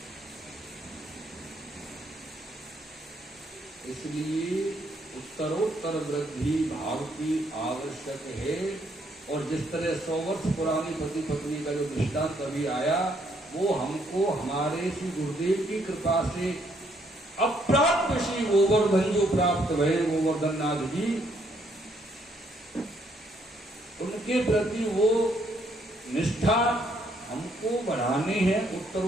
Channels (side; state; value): both; normal; correlation 0.70